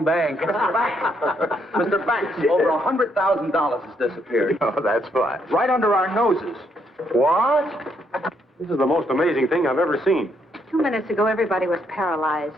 bank. Mr. Banks, over $100,000 has disappeared. Oh, that's fine. Right under our noses. What? This is the most amazing thing I've ever seen. 2 minutes ago, everybody was paralyzed.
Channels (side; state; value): both; normal; correlation 0.74